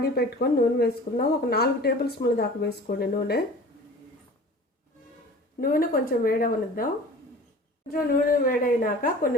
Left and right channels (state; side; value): normal; both; correlation 0.42